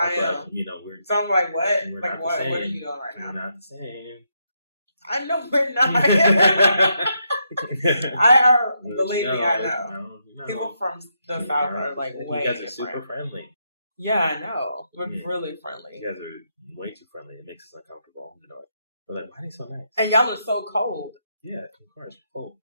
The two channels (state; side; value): inverted; both; correlation -0.80